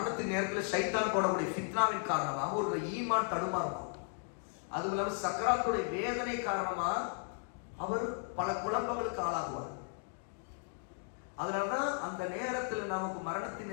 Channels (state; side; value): silent; right; 54 dB below the other